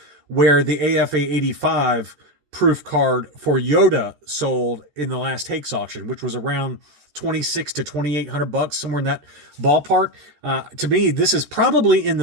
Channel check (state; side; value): late; left; 13 ms